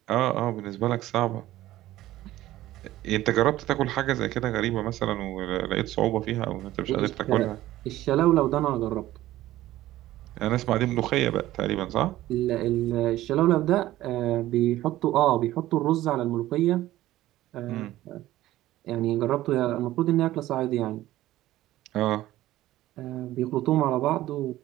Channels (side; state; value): left; quieter; 15.3 dB